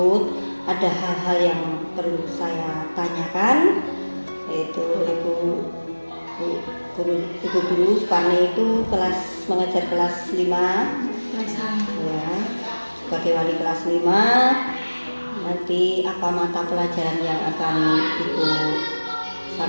ada hal-hal yang perlu saya tanyakan, yaitu Ibu Guru Suparni itu mengajar kelas 5 ya, sebagai wali kelas 5. Nanti apa mata pelajaran yang akan Ibu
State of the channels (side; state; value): both; inverted; correlation -1.00